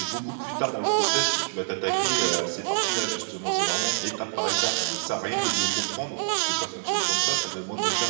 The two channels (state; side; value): silent; left; 57 dB below the other